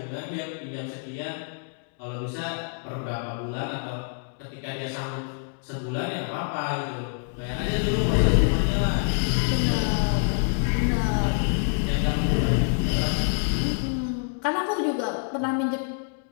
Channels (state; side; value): silent; right; 61 dB below the other